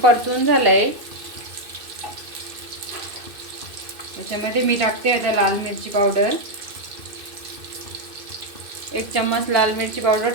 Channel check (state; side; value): late; left; 2.6 ms